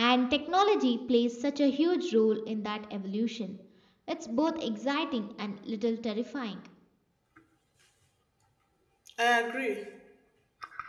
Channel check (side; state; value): both; identical; correlation 1.00